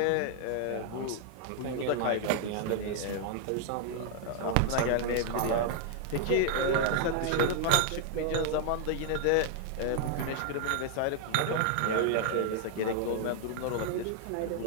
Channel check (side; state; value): both; different; correlation 0.00